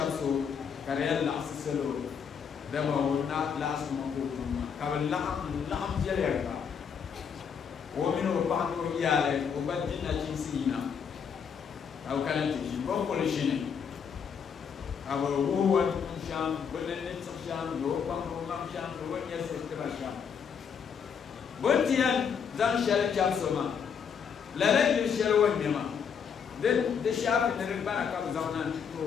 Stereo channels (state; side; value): quieter; right; 7.0 dB